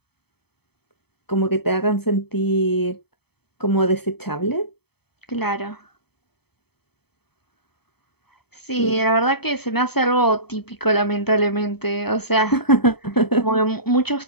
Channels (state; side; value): late; right; 0.97 ms